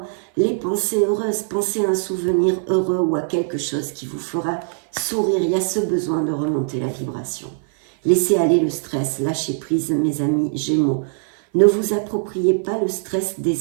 les pensées heureuses, pensez à un souvenir heureux ou à quelque chose qui vous fera sourire. Il y a ce besoin de remonter la vibration. Laissez aller le stress, lâchez prise mes amis Gémeaux. Ne vous appropriez pas le stress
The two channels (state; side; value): silent; left; 57 dB below the other